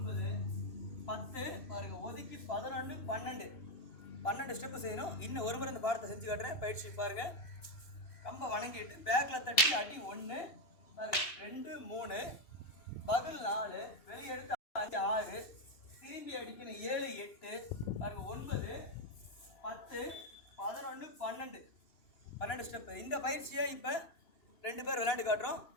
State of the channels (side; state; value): right; late; 2.7 ms